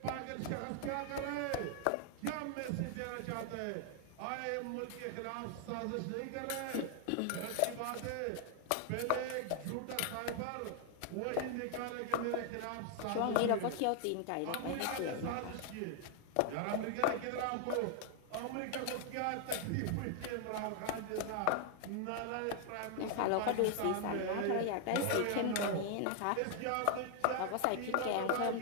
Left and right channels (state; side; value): different; both; correlation 0.00